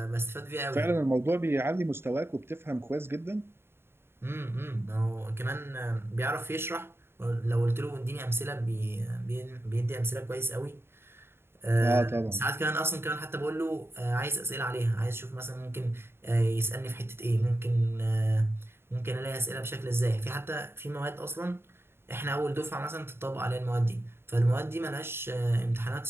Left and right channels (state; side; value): late; left; 0.11 ms